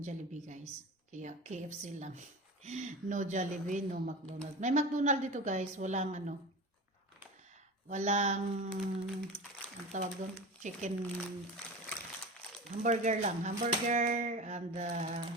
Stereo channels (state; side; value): normal; both; correlation 0.30